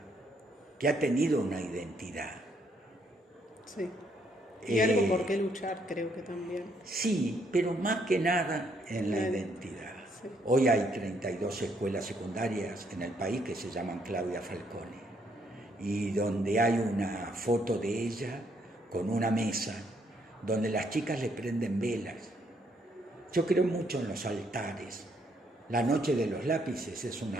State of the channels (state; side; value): normal; both; correlation 0.71